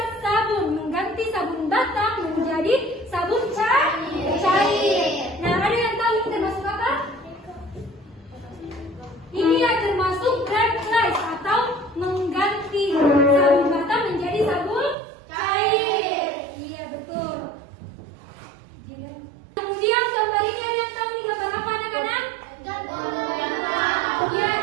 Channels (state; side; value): drops out; left; at 15.0 s